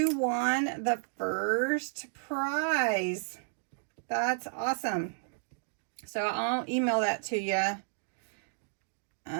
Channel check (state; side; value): silent; left; digital silence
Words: won the first prize. That's awesome. So I'll email that to you